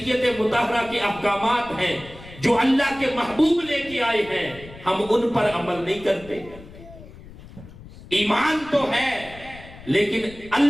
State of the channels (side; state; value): left; noise; rumble, 18 dB below the sound